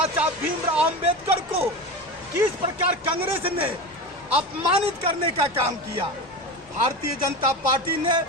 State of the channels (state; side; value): normal; both; correlation 0.25